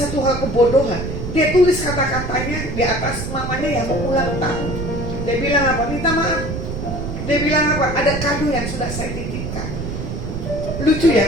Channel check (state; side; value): noise; right; rumble, 5 dB below the sound